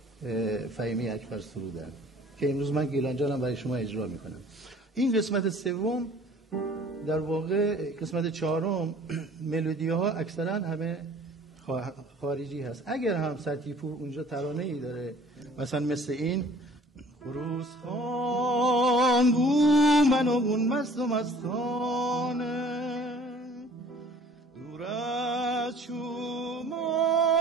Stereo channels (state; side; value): normal; both; correlation 0.52